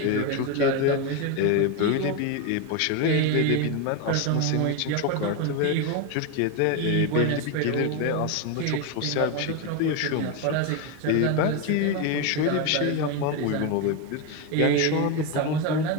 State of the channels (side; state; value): both; different; correlation 0.02